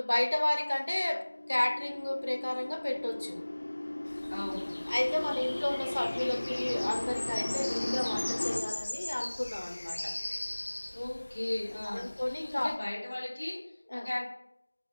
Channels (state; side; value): inverted; both; correlation -1.00